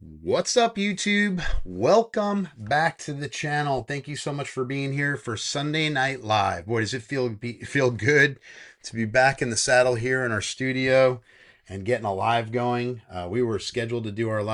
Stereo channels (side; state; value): both; identical; correlation 1.00